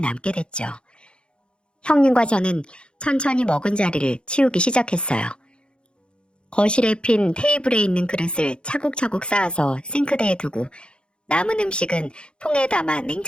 됐죠. 형님과 저는 천천히 먹은 자리를 치우기 시작했어요. 거실에 핀 테이블에 있는 그릇을 차곡차곡 쌓아서 싱크대에 두고 남은 음식은 통에 담아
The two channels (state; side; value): late; right; 0.054 ms